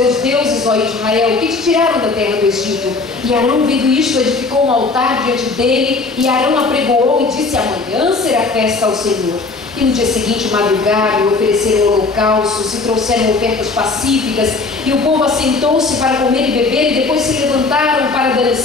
deuses, ó Israel, que te tiraram da terra do Egito. E Arão, vendo isto, edificou um altar diante dele, e Arão apregoou e disse: amanhã será festa ao Senhor. E no dia seguinte madrugaram e ofereceram holocaustos e trouxeram ofertas pacíficas, e o povo assentou-se para comer e beber, e depois se levantaram para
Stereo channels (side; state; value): right; quieter; 3.9 dB